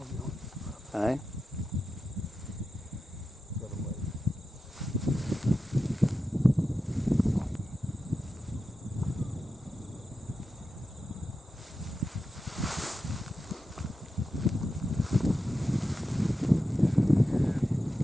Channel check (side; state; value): both; normal; correlation 0.90